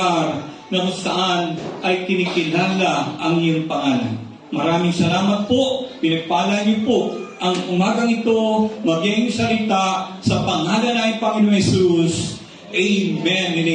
na kung saan ay kinikilala ang iyong pangalan. Maraming salamat po. Pinagpala niyo po ang umagang ito, maging salita sa pangalan ng Panginoon Jesus. Amen and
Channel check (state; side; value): identical; both; correlation 1.00